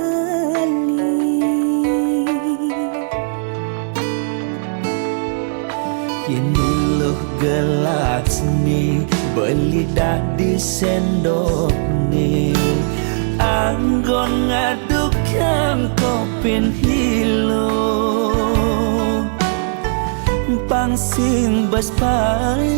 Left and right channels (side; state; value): left; silent; 64 dB below the other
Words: Ini loh gelas nih beli dah di sendok nih anggon ngadukan kopin hilo pangsing bas